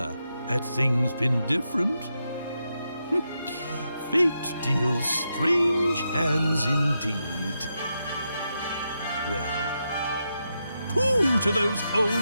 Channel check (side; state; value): both; inverted; correlation -0.85